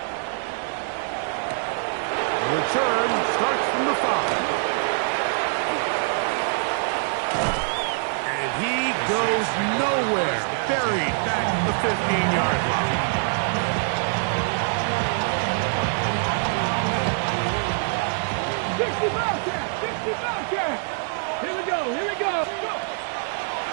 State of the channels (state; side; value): silent; left; digital silence